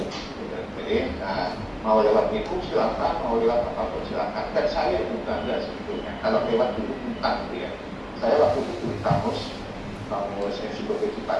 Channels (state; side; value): identical; both; correlation 1.00